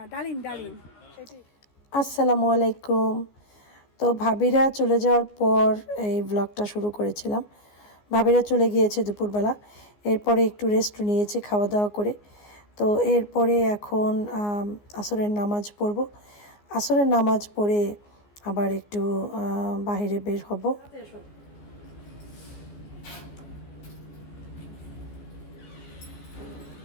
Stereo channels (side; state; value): right; late; 14 ms